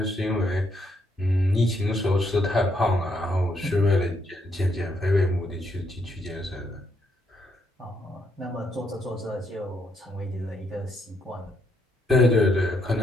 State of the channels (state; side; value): normal; both; correlation 0.75